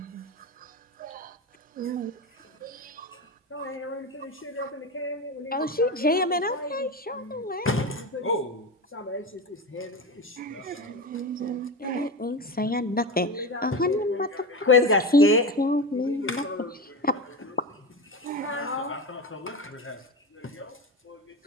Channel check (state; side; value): normal; both; correlation 0.22